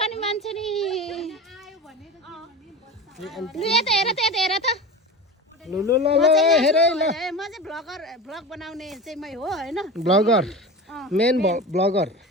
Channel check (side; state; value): both; normal; correlation 0.29